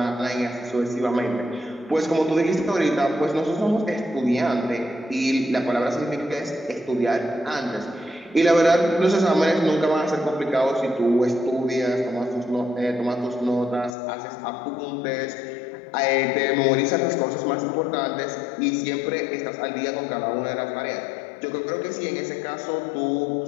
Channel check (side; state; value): right; drops out; at 14.0 s